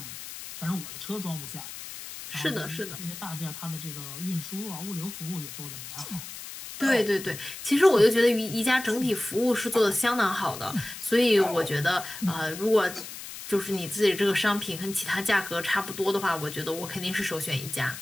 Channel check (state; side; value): noise; left; hiss, 11 dB below the sound